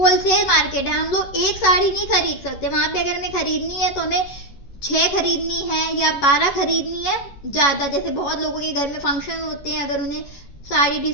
मार्केट है। हम लोग एक साड़ी नहीं खरीद सकते, वहां पे अगर हमें खरीदनी है तो हमें 6 खरीदनी है या 12 खरीदनी है ज्यादा। जैसे बहुत लोगों के घर में फंक्शन होते हैं, अगर उन्हें साड़ी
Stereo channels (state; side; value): late; right; 11 ms